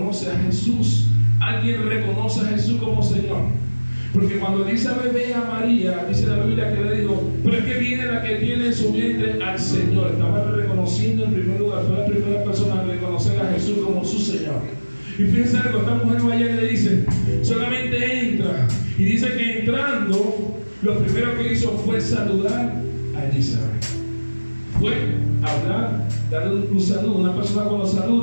a Jesús. Alguien reconoce a Jesús como Señor. Porque cuando Elizabeth ve a María, dice la Biblia que le dijo: pero es que viene la que tiene en su vientre al Señor. Estaba reconociendo en primer lugar, fue la primera persona a reconocer a Jesús como su Señor. Y fíjense algo, esta mujer vaya y le dice: solamente entra. Y dice que entrando, lo primero que hizo fue saludar a Elizabeth. Fue hablar, darle un saludo. Una persona cuando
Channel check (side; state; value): both; inverted; correlation -1.00